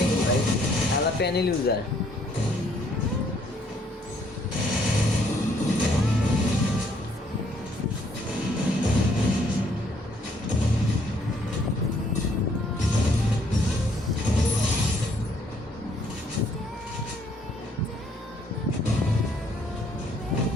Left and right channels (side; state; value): both; normal; correlation 0.66